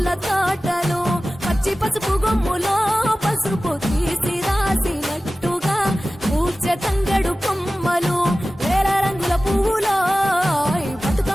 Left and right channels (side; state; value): both; normal; correlation 0.96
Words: తోటలు పచ్చి పసుపు గొమ్ములో పసుపు తీసి రాసినట్టుగా పూచె తంగెడు కొమ్మలు వేల రంగుల పువ్వులో